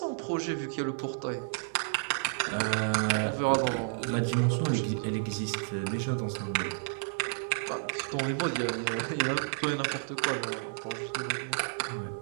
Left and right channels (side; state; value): left; silent; digital silence